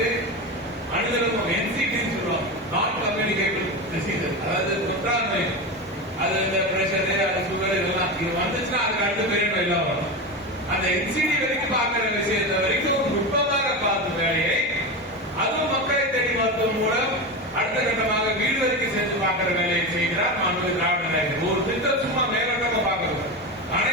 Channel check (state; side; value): normal; both; correlation 0.20